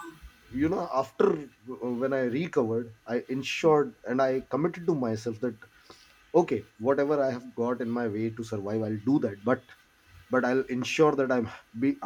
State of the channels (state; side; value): identical; both; correlation 1.00